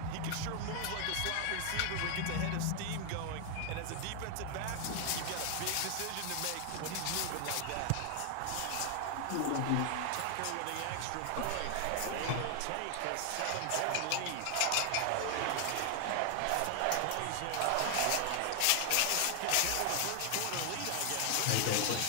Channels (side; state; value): both; different; correlation 0.00